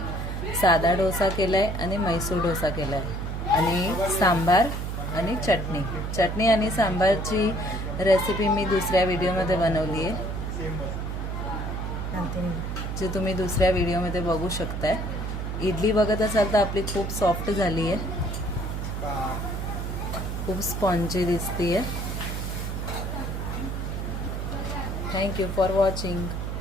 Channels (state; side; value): noise; right; hum, 4 dB below the sound